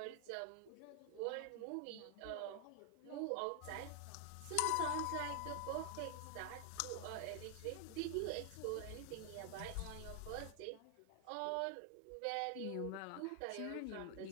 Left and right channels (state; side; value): different; both; correlation 0.00